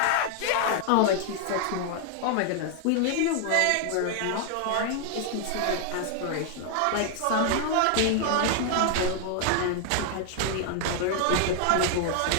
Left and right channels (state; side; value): different; both; correlation 0.00